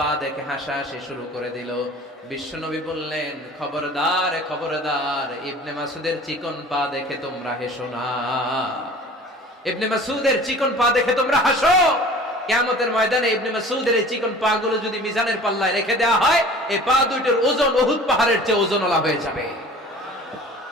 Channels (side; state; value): both; normal; correlation 0.44